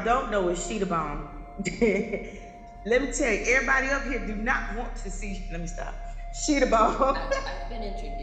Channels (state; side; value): identical; both; correlation 1.00